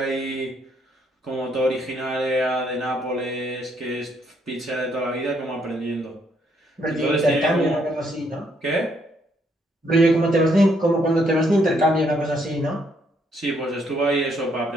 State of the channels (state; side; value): normal; both; correlation 0.72